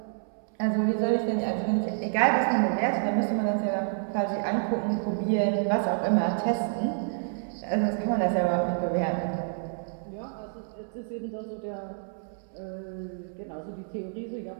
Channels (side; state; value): left; silent; 59 dB below the other